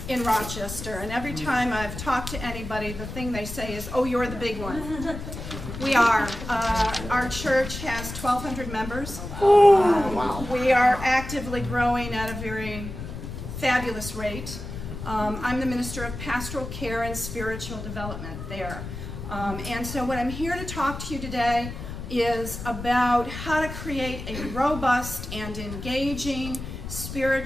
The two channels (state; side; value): noise; left; rumble, 9 dB below the sound